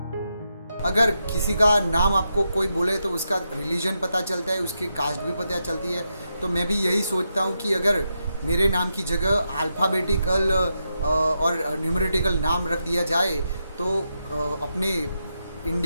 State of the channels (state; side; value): inverted; both; correlation -0.85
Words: अगर किसी का नाम आपको कोई बोले तो उसका रिलीजन पता चलता है, उसकी कास्ट भी पता चलती है। तो मैं भी यही सोचता हूँ कि अगर मेरे नाम की जगह अल्फ़ाबेटिकल और न्यूमेरिटिकल नाम रख दिया जाए तो अपने